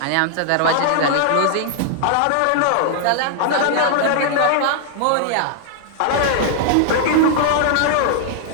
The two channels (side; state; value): both; different; correlation 0.00